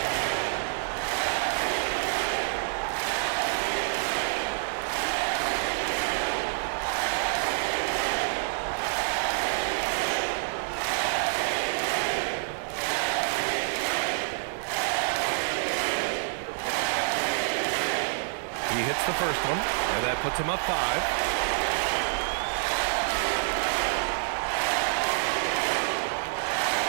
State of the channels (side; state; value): left; silent; 60 dB below the other